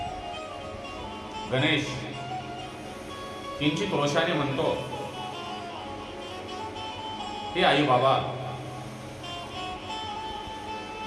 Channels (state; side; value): identical; both; correlation 1.00